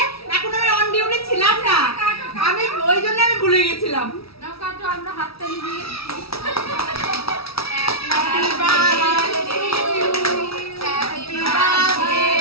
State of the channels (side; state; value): right; late; 0.76 ms